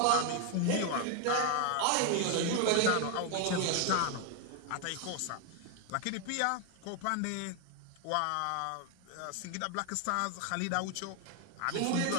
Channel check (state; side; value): different; both; correlation 0.01